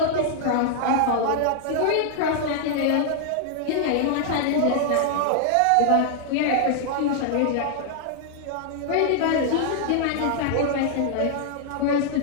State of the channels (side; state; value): both; different; correlation 0.00